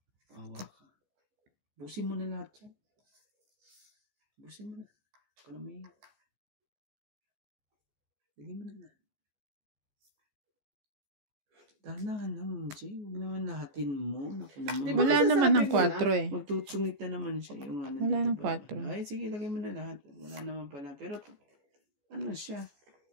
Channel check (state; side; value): late; left; 14 ms